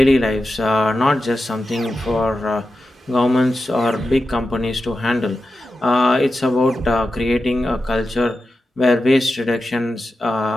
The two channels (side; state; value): both; normal; correlation 0.91